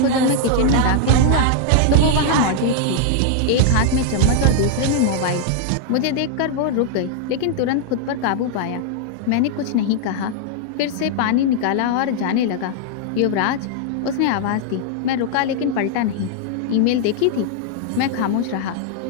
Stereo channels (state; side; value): different; both; correlation 0.00